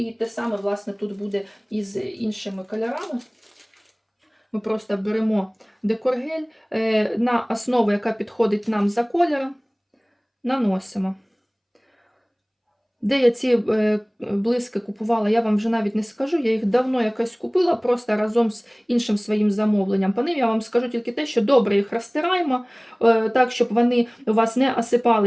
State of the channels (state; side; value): identical; both; correlation 1.00